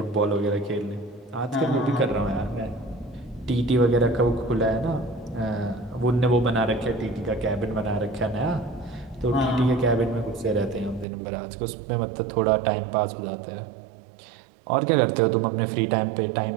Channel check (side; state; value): left; drops out; at 11.1 s